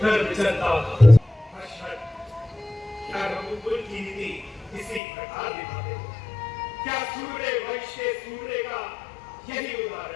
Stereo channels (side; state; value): right; drops out; at 5.0 s